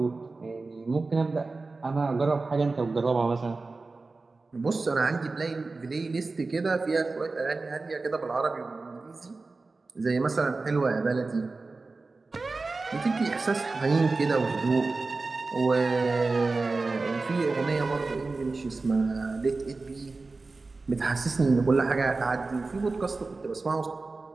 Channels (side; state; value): left; quieter; 3.7 dB